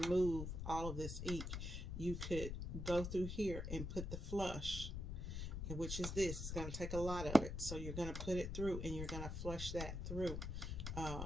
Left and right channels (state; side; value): noise; left; rumble, 4 dB below the sound